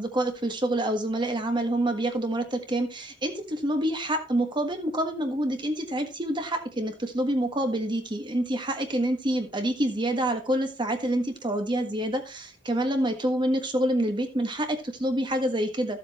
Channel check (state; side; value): normal; both; correlation 0.72